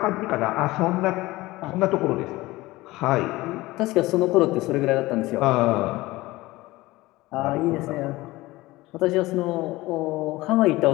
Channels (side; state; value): right; quieter; 19.5 dB